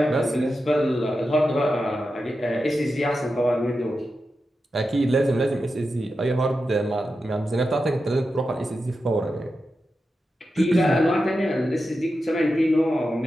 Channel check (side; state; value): both; normal; correlation 0.90